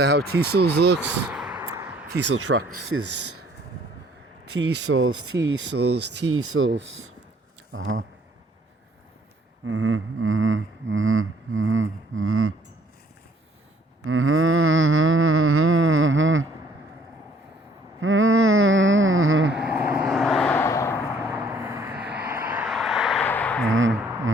how Teasels looks? Teasel trucks is Teasels.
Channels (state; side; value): normal; both; correlation 0.60